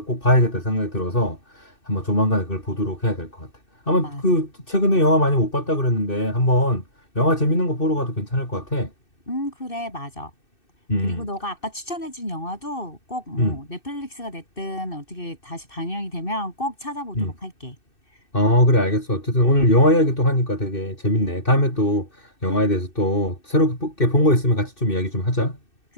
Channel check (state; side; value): late; right; 2.6 ms